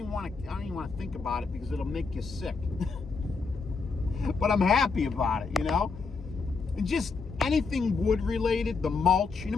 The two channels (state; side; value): quieter; right; 4.7 dB